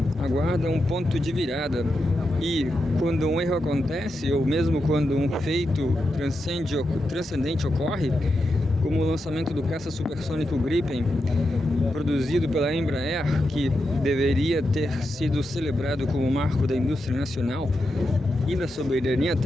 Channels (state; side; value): normal; both; correlation 0.87